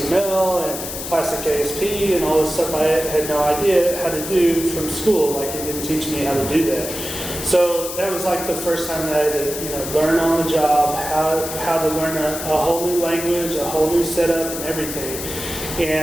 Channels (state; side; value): noise; left; hiss, 7 dB below the sound